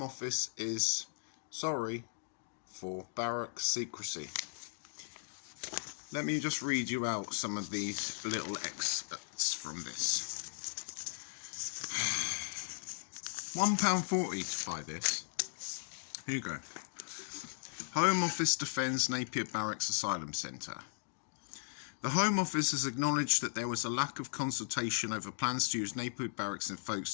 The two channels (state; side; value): silent; right; digital silence